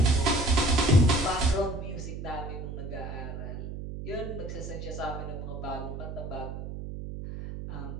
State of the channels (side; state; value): right; noise; hum, 7 dB below the sound